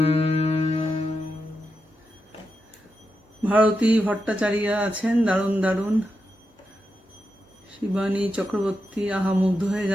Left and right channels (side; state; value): both; normal; correlation 0.87